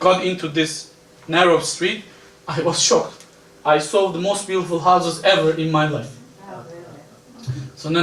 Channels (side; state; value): both; identical; correlation 1.00